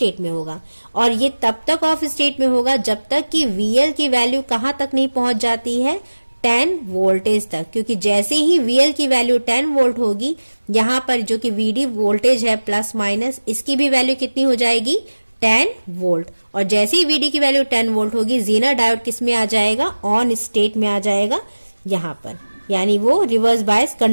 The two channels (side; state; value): both; inverted; correlation -1.00